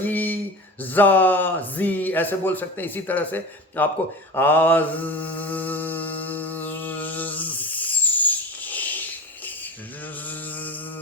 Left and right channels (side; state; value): both; normal; correlation 0.32